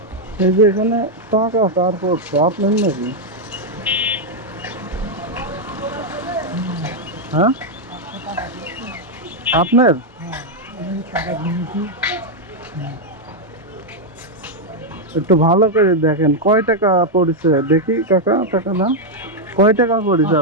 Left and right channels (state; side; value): normal; both; correlation 0.00